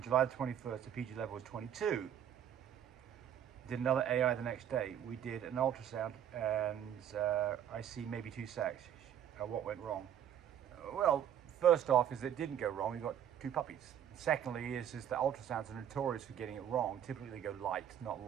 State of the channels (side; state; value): left; quieter; 9.8 dB